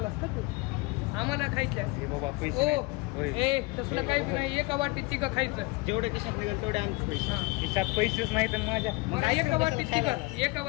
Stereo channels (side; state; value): right; quieter; 24.1 dB